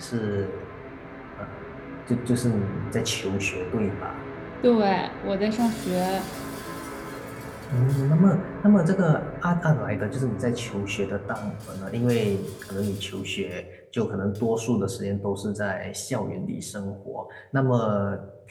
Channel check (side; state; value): both; identical; correlation 1.00